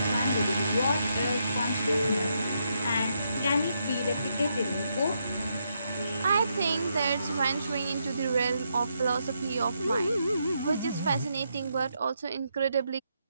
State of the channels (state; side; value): inverted; both; correlation -0.80